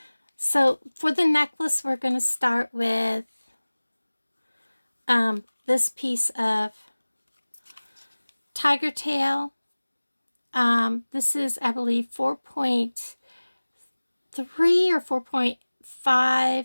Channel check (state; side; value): inverted; both; correlation -1.00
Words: So for the necklace, we're going to start with this piece of tiger tail. This is, I believe, 4.3 or